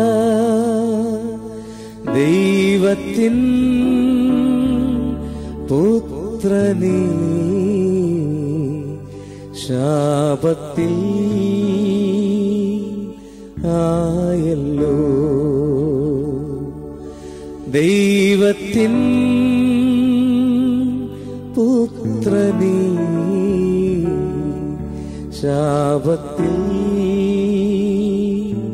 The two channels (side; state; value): both; identical; correlation 1.00